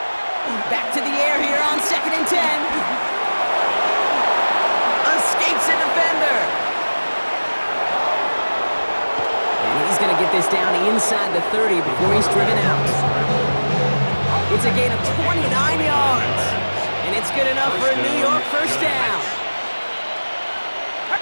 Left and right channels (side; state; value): both; inverted; correlation -1.00